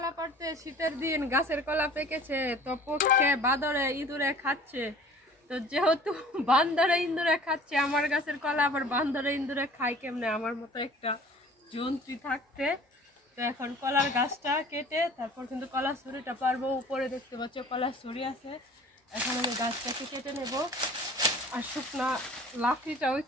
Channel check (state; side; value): normal; both; correlation 0.47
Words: পাড়তে। শীতের দিন গাছের কলা পেকেছে, তো পক্ষে বাদরে ইঁদুরে খাচ্ছে। তো যেহেতু বান্দরে ইঁদুরে খাচ্ছে আমার গাছের কলা, আবার বান্দরে ইঁদুরে খায় কেমনে আমার মতো একটা জন্তু থাকতে। তো এখন কলার গাছটা কেটে তারপর কিন্তু কলার ছুরিটা পারবো। উপরে দেখতে পাচ্ছ কলার ছুরি আছে। এখন আমি গাছটাকে কেটে নেব, আর শুকনা লাকড়িটাও